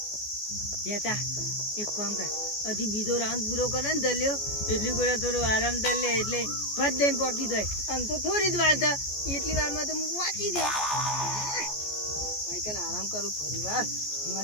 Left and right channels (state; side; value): late; right; 14 ms